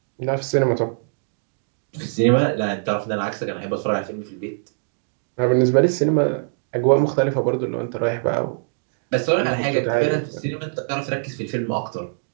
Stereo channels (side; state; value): left; silent; digital silence